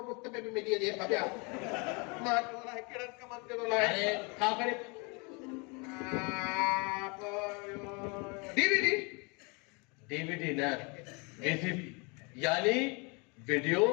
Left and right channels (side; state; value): right; quieter; 30.8 dB